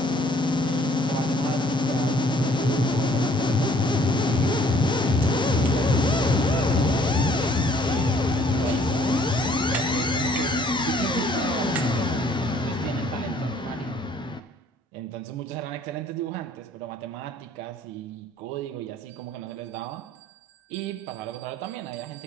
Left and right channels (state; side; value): normal; both; correlation 0.60